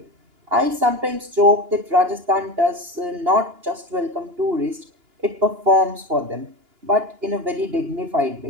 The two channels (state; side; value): late; left; 2.9 ms